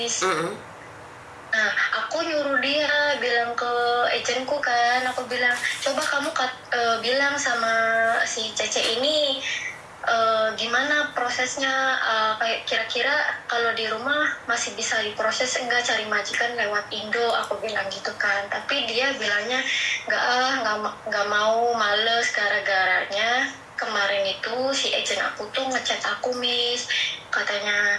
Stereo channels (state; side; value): identical; both; correlation 1.00